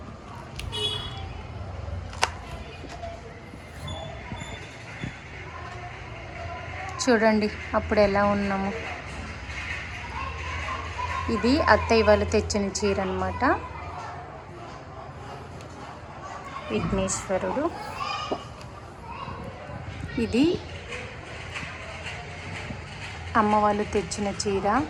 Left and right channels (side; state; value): both; identical; correlation 1.00